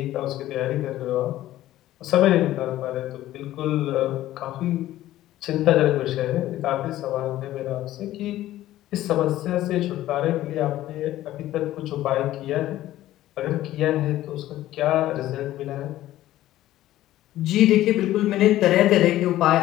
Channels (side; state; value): right; quieter; 14.5 dB